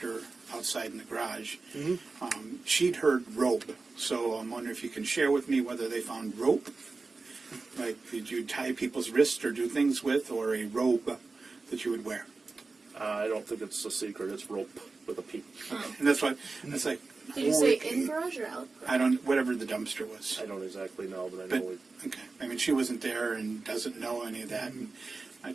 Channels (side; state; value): left; quieter; 3.9 dB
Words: outside in the garage. She'd heard rope, so I'm wondering if you can share with me whether they found rope, like did you tie people's wrists or do things with, or a robe that you would wear. I don't think it's a secret. It's rope with a P. And that's like, Did you say in garage or out garage? I don't, whatever the dumpster was. I don't exactly know, but I But, know we... okay, I mean, she wasn't there and doesn't know any of that. And I